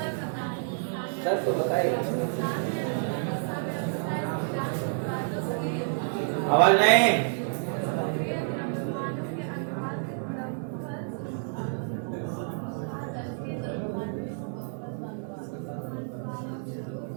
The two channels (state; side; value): silent; left; digital silence